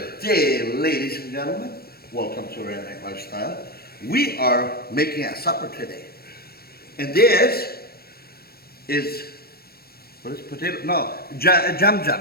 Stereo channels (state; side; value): late; right; 0.45 ms